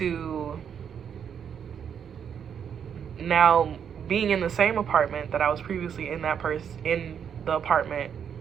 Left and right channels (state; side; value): quieter; left; 7.9 dB